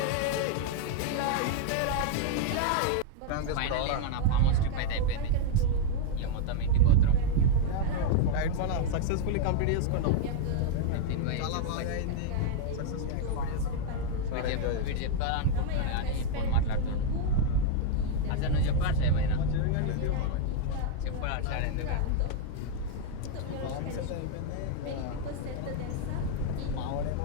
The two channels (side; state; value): both; different; correlation -0.01